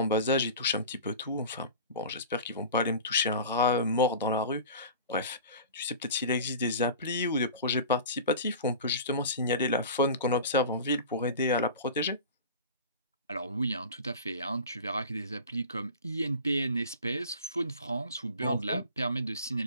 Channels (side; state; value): both; inverted; correlation -0.36